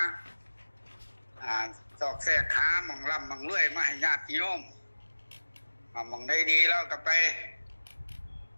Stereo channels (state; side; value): inverted; both; correlation -1.00